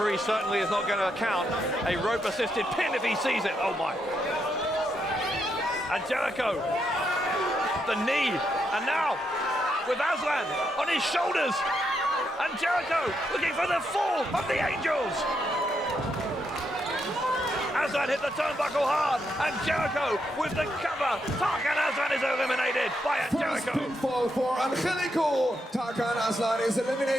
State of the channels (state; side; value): normal; both; correlation 0.80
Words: certainly is not going to count a rope-assisted pin if he sees it. Oh my. Angelico, the knee, and now with Aslan on his shoulders. Angelico looking for the fall of the Angels. Aslan hit the turnbuckle hard. Angelico with the cover. Tarkan Aslan is eliminated by Angelico. First pinfall for Angelico. Tarkan Aslan is